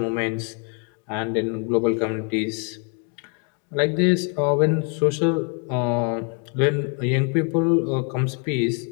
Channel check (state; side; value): quieter; right; 37.3 dB